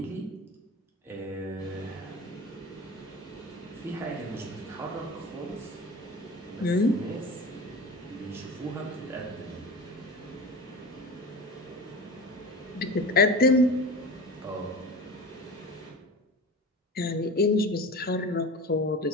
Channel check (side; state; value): both; normal; correlation 0.33